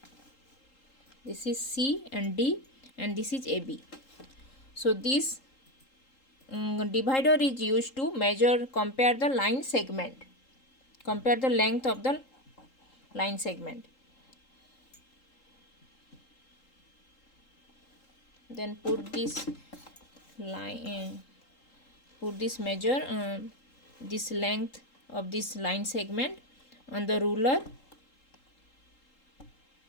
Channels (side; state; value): right; late; 3.8 ms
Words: This is C and D, and this is AB. So this divider is used to compare the line segment, compare the length of the line segment. Then put this line, measure this length of this line segment on the ruler.